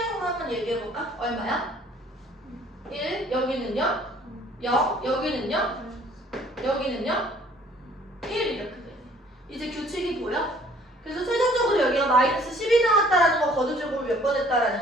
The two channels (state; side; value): normal; both; correlation 0.57